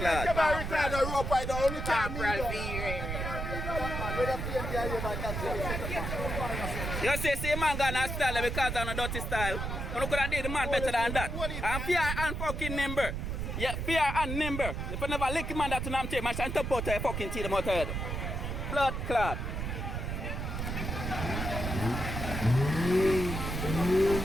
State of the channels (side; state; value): right; noise; rumble, 3 dB below the sound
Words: You see man got a style because of a dirty style. You could have did the man better than that. And fear and fucking nimble. Yeah, fear and nimble. If you never lick man that to them take, man shall top out your fucking teeth them out head. Blood clot.